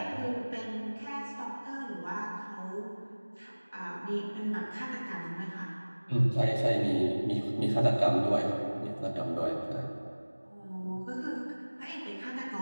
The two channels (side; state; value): both; inverted; correlation -1.00